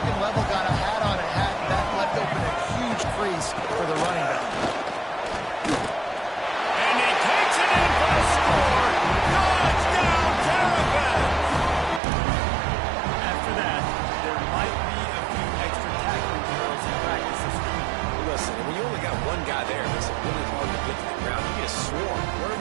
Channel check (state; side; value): drops out; left; at 12.0 s